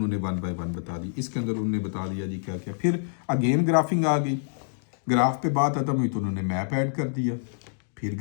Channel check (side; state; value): right; silent; digital silence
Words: 1 by 1 बता दी। इसके अंदर उन्होंने बता दिया जी क्या क्या। फिर अगेन ग्राफिंग आ गई, ग्राफ पे बात खत्म हुई तो उन्होंने मैप ऐड कर दिया, फिर